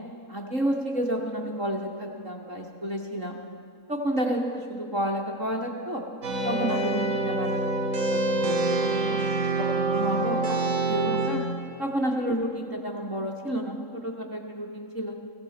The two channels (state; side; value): late; left; 3.7 ms